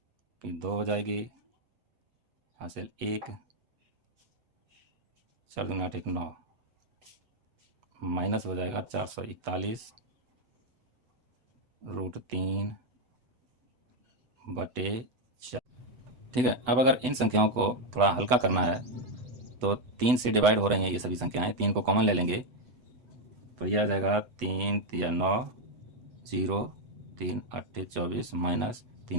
फिर 2 हो जाएगी, हासिल 1, 4 दूनी 8 1 9, माइनस हो जाएगा 441√3/4। ठीक है। अब अगर इन संख्याओं को थोड़ा हल्का करना है तो 3 से डिवाइड हो रही हैं ये सभी संख्याएं, 3 को कॉमन ले लेंगे तो यह आ जाएगा 3 तिया 9 0 3 8 24 माइनस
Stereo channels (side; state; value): left; late; 8.1 ms